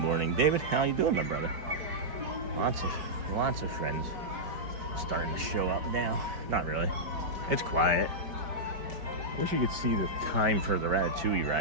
David, how you doing, my brother? Lots of friends starting to show up now. Not really. It's quiet. Wish you could see the time for the Ratatouille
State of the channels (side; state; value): left; late; 5.1 ms